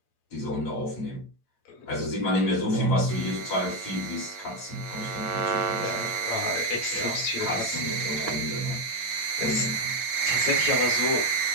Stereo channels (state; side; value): late; right; 8.8 ms